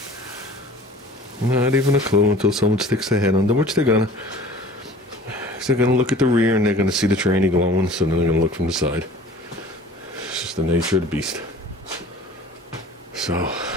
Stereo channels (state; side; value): normal; both; correlation 0.45